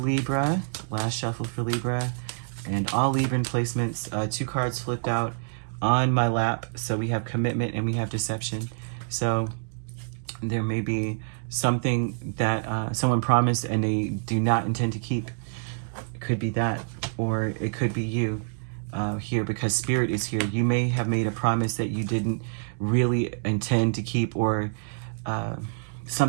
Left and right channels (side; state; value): left; silent; digital silence